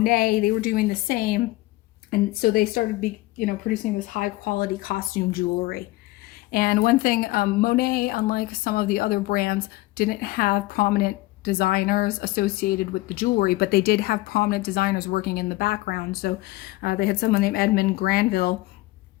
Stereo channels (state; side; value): quieter; right; 19.1 dB